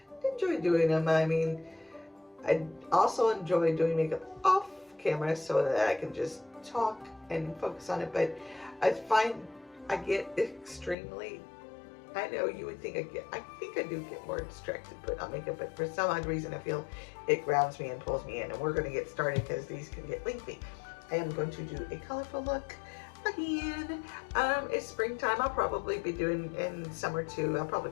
enjoy doing them. I mean, I also enjoy doing makeup off camera so that I can just talk and focus on it, but I find I get extremely, I know you would think I think I do get more distracted put on makeup, but for some odd reason I feel it grounds me and pulls me in, and we're going to get started because these can get lengthy. I am going to do a colorful look again. It's springtime. I'll probably be doing, in summer too, I'll probably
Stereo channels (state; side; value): drops out; right; at 11.0 s